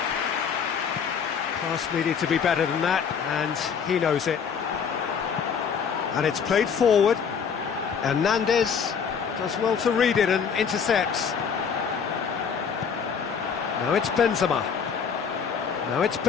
Pass needed to be better than that, and he knows it. And it's played forward. Hernandez does well to read it and intercepts. Now it's Benzema.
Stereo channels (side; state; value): right; quieter; 6.7 dB